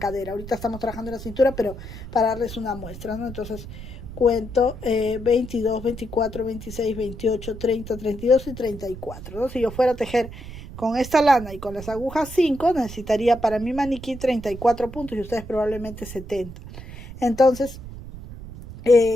ahorita estamos trabajando en la cintura, pero para darles una muestra, ¿no? Entonces cuento 22, 24, 26, 28, 30, 32 y 34, ¿no? Si yo fuera a tejer con esta lana y con las agujas 5, necesitaría para mi maniquí 34 puntos y ustedes probablemente 70. Entonces,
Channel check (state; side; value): noise; right; rumble, 12 dB below the sound